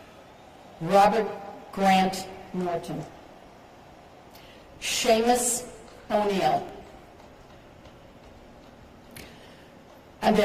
Robert Grant Norton, Seamus O'Neill,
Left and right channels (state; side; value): identical; both; correlation 1.00